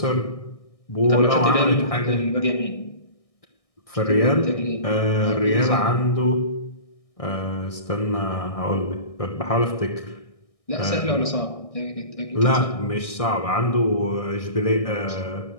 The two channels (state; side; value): late; right; 1.6 ms